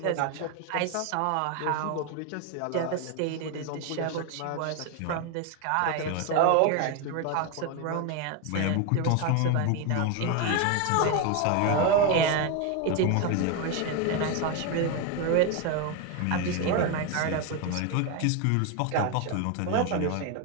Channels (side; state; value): both; different; correlation 0.02